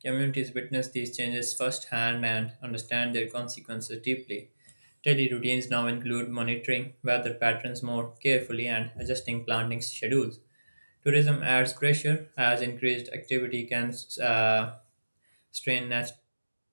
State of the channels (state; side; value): inverted; both; correlation -1.00